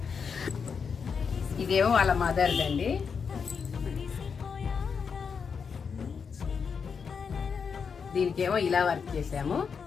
ఇదేమో వాళ్ళ మదర్దండి. దీనికేమో ఇలా వర్క్ చేసాము,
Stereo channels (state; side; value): quieter; right; 6.1 dB